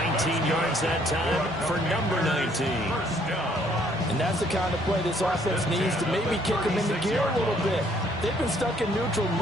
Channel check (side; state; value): both; normal; correlation 0.64